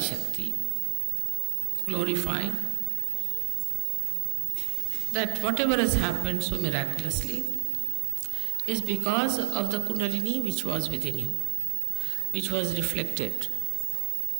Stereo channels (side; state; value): left; silent; 59 dB below the other